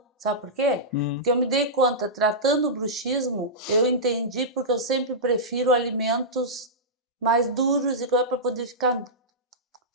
Sabe por quê? Porque eu me dei conta, tratando o bruxismo, eu entendi porque eu sempre prefiro alimentos mais duros e para poder ficar,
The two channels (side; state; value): both; normal; correlation -0.14